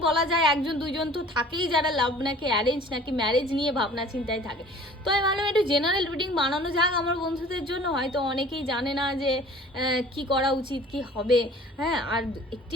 বলা যায় একজন দুইজন তো থাকেই যারা লাভ নাকি অ্যারেঞ্জ নাকি ম্যারেজ নিয়ে ভাবনা চিন্তায় থাকে। তো আমি ভাবলাম একটু জেনারেল রিডিং বানানো যাক আমার বন্ধুদের জন্য। হয়তো অনেকেই জানে না যে কি করা উচিত, কি হবে। হ্যাঁ, আর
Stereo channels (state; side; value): normal; both; correlation 0.48